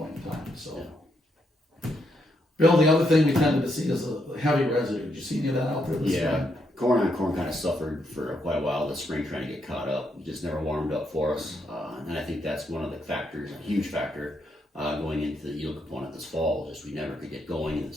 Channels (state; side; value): normal; both; correlation 0.78